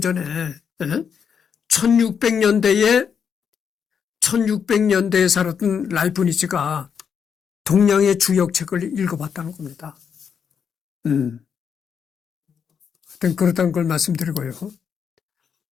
전에 1600년대에 살았던 라이프니츠가 동양의 주역책을 읽어봤다는 겁니다. 하여튼 그렇다는 걸 말씀드리고요.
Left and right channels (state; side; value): quieter; right; 7.0 dB